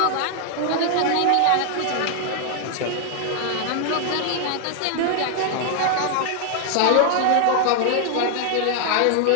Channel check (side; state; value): both; different; correlation 0.00